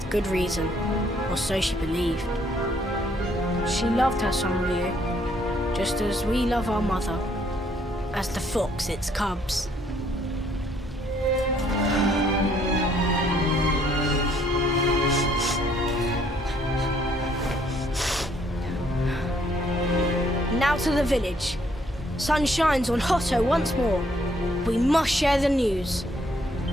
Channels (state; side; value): normal; both; correlation 0.67